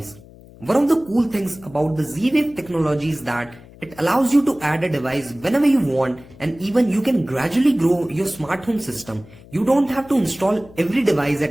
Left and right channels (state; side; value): noise; left; hum, 22 dB below the sound